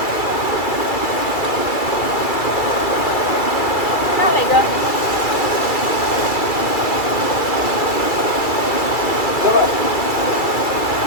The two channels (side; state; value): right; late; 2.3 ms